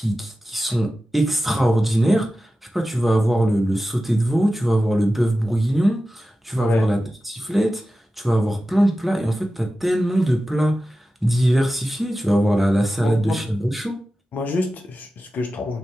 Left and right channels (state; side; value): normal; both; correlation 0.94